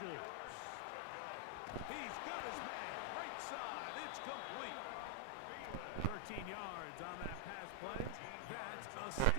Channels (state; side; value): different; both; correlation 0.00